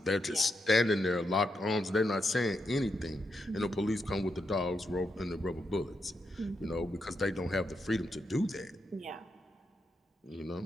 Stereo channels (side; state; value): both; normal; correlation 0.83